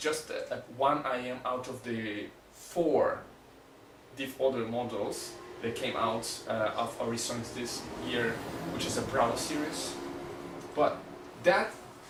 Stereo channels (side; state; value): both; identical; correlation 1.00